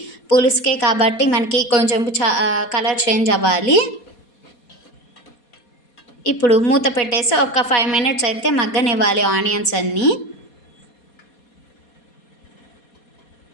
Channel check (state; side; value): late; right; 4.2 ms